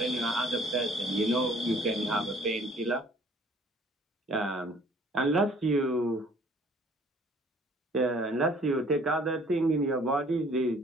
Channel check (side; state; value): both; normal; correlation 0.56